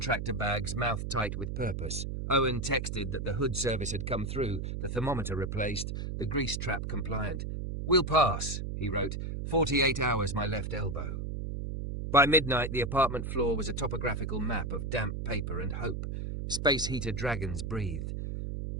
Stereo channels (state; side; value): noise; right; hum, 4 dB below the sound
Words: bags, mouth tight with purpose. Owen texted that the hood service had come through, the thermometer replaced, the grease trap compliant. We'll pass, he wrote. 48 hours my left elbow. By midnight, the apartment floor was a topographical map of damp paper and hope. Space heater dragons breathed.